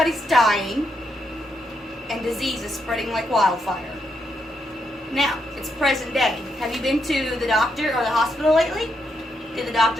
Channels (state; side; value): normal; both; correlation 0.80